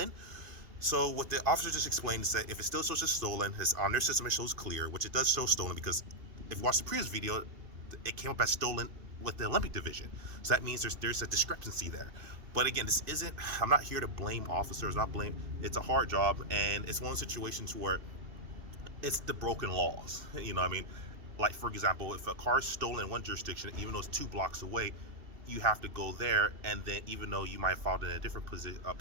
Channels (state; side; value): late; left; 2.7 ms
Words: So what the officer just explained is that if it still shows as stolen, it's on their system, it shows clear, which it does show stolen because if you watch the previous video, it came up as stolen with the Olympic division. So that means there's a discrepancy there. But again, I'm not here to blame officers, it's a hard job, and it's one of those situations where it's the broken laws. You know what I mean? Like, for example, if a car is stolen in one jurisdiction, even though it's 2 blocks away, you have to go there, and then even though you might have filed in a different police